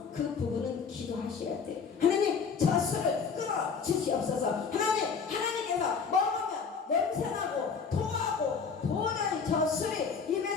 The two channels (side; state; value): right; quieter; 5.7 dB